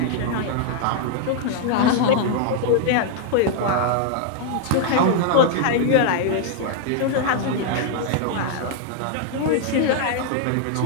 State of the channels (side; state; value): both; different; correlation 0.00